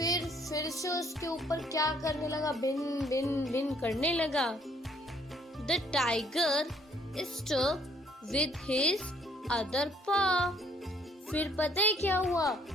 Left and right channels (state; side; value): normal; both; correlation 0.63